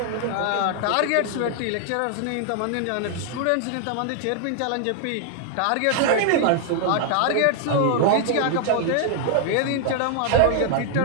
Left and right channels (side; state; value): both; different; correlation 0.00